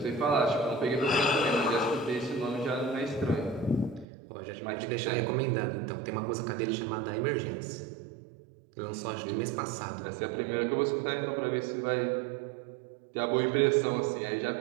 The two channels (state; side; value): drops out; left; at 4.0 s